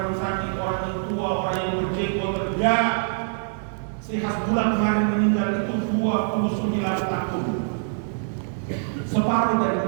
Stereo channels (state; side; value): silent; left; digital silence